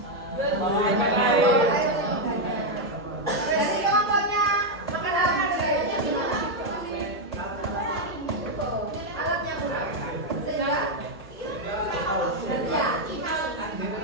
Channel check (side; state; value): left; noise; hum, 25 dB below the sound